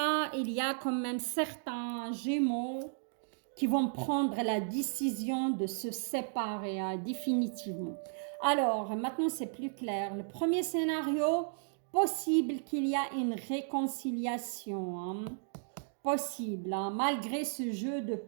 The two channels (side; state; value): left; silent; digital silence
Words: il y a quand même certains Gémeaux qui vont prendre la décision de se séparer, hein, définitivement. Alors, maintenant c'est plus clair. Le premier scénario, possible qu'il y a une réconciliation, hein, possible, hein, malgré ce jeu de